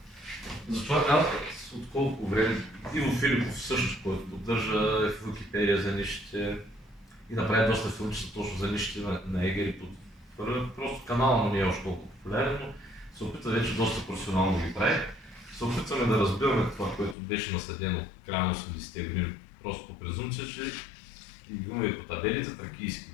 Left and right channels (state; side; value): drops out; right; at 17.2 s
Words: затова аз от колко време Иво Филипов също, който поддържа в Википедия за нишите и направи доста филмчета точно за нишите на егери. Просто канала му не е още толкова популярен, но се опитва вече доста професионално ги прави. Се опитваме да разбираме това, което беше наследено в края на 80-те години, просто по презумпция, че и имаме и по табелите тракийски